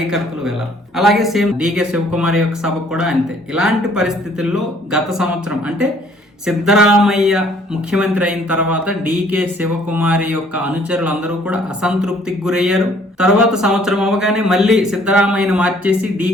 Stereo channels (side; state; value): both; normal; correlation 0.59